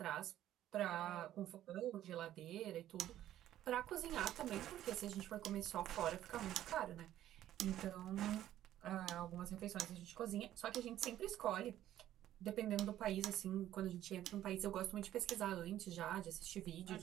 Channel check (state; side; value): quieter; left; 12.6 dB